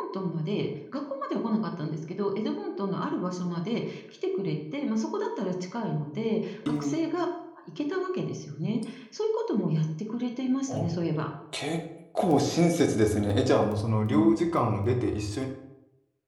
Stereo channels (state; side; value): identical; both; correlation 1.00